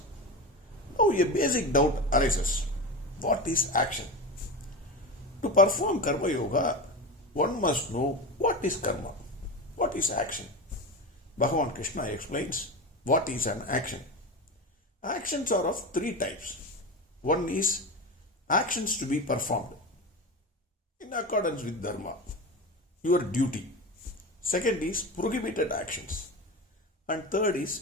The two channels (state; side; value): normal; both; correlation 0.23